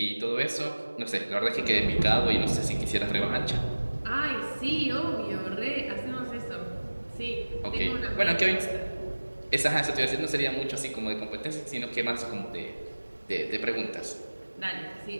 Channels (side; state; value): both; inverted; correlation -1.00